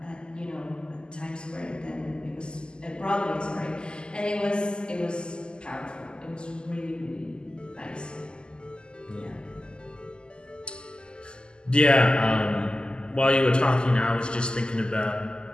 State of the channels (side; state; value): right; late; 0.048 ms